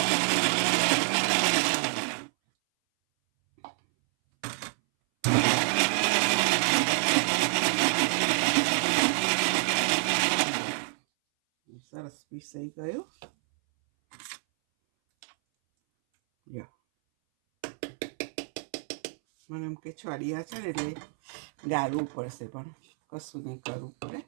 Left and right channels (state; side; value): silent; left; 59 dB below the other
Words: સરસ પીસાઈ ગયું. મને એમ કે છડિયા છે ને એટલે ગાળવું પડશે, પણ કશું નહીં, કરવું પડે.